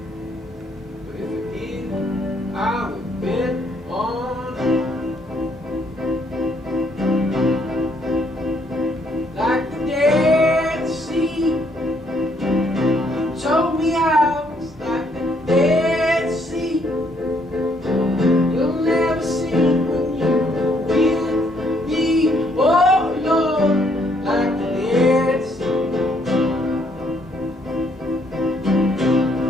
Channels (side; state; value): both; normal; correlation 0.69